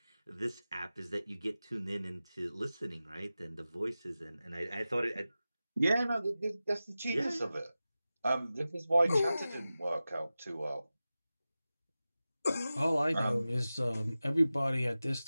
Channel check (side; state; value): both; inverted; correlation -0.95